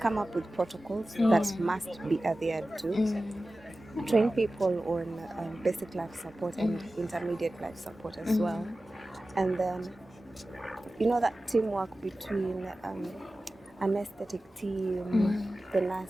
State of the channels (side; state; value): both; normal; correlation 0.95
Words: up with protocols that must be adhered to. Train people on basic life support and intermediate life support as well. And then, that teamwork between anesthetic team, the